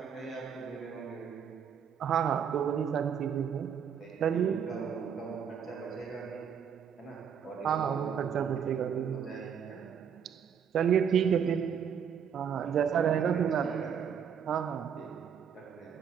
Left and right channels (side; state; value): left; quieter; 7.7 dB